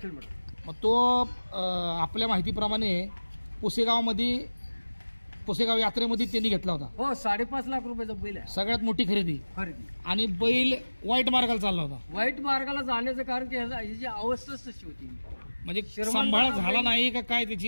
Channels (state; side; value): inverted; both; correlation -1.00